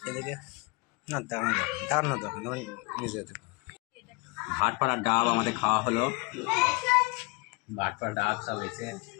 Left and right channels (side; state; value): right; quieter; 27.4 dB